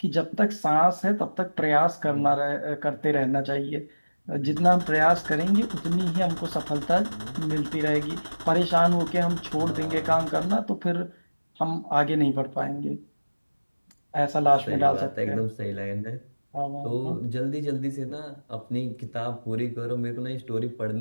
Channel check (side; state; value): both; inverted; correlation -1.00